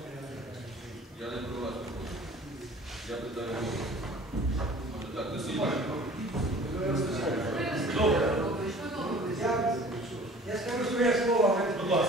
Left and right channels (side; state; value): both; normal; correlation 0.48